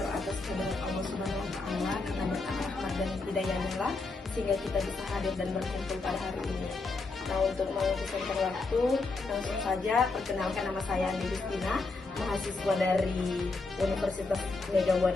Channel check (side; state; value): right; quieter; 3.7 dB